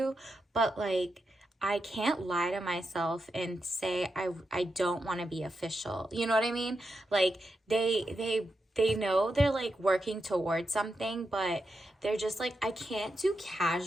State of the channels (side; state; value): both; normal; correlation 0.87